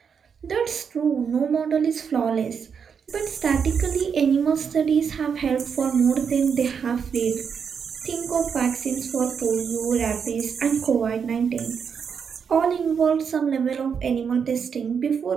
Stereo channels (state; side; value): quieter; left; 6.7 dB